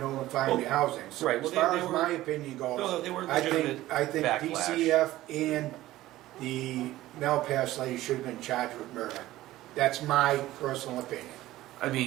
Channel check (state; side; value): quieter; left; 15.8 dB